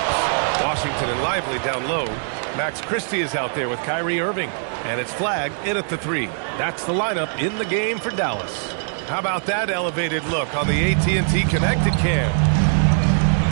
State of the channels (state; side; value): silent; left; 64 dB below the other